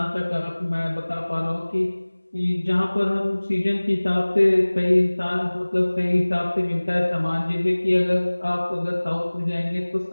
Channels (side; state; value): both; inverted; correlation -1.00